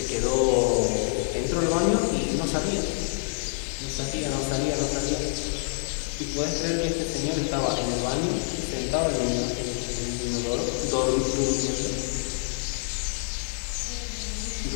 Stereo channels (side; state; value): right; silent; digital silence